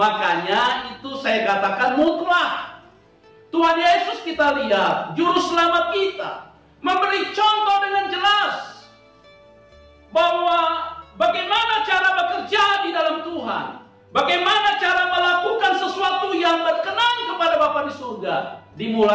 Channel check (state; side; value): identical; both; correlation 1.00